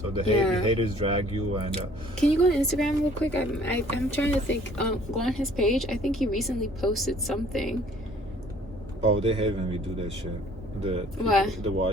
the haters drag you. And can you go on Instagram real quick? I'm trying to think. Go on his page. I think he recently posted something. Oh, they hate when we do that shit. The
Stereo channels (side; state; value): both; normal; correlation 0.55